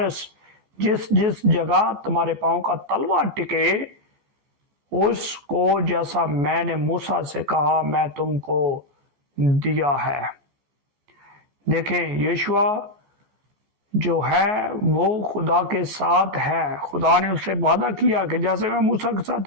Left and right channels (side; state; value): left; late; 14 ms